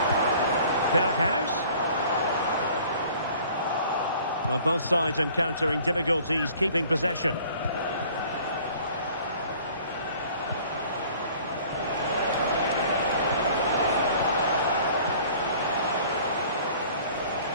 Berghuis. Well, both sides encountering difficulties keeping possession.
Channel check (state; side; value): inverted; both; correlation -0.51